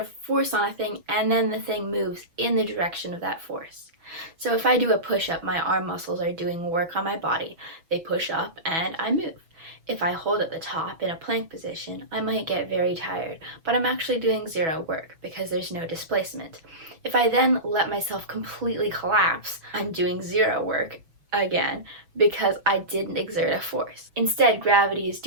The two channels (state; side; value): late; left; 6.1 ms